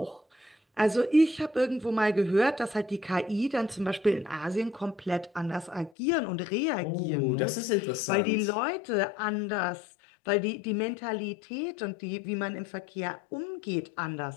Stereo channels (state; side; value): drops out; right; at 5.9 s